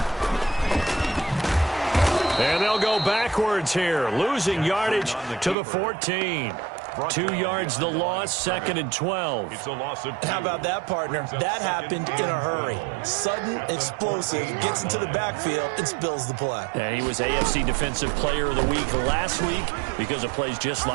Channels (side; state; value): left; drops out; at 5.6 s